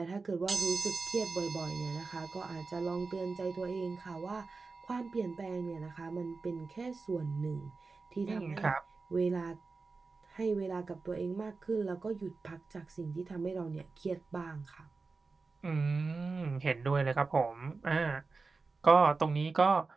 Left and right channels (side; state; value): left; quieter; 4.1 dB